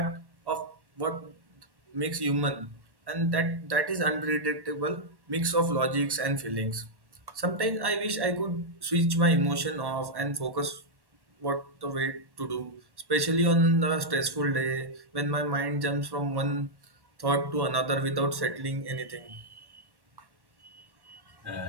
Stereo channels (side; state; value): left; late; 1.1 ms